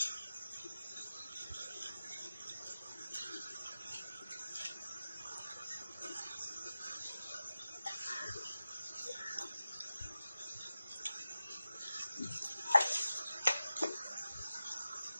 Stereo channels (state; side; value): inverted; both; correlation -0.93